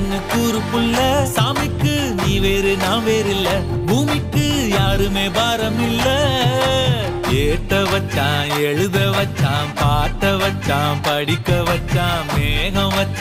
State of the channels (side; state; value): both; identical; correlation 1.00